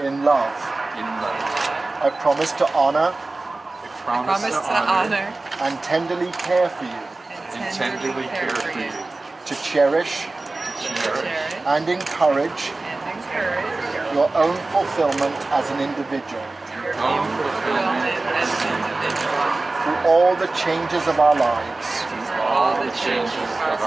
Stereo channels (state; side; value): quieter; left; 3.2 dB